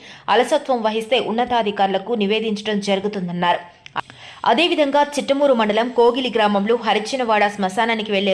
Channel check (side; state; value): both; identical; correlation 1.00